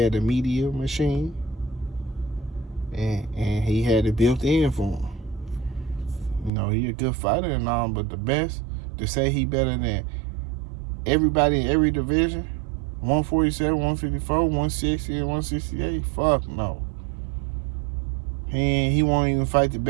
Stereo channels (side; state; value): left; drops out; at 6.5 s